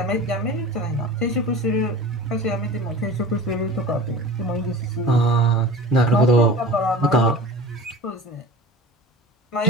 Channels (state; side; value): normal; both; correlation 0.36